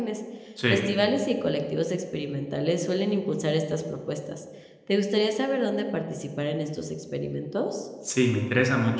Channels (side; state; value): both; identical; correlation 1.00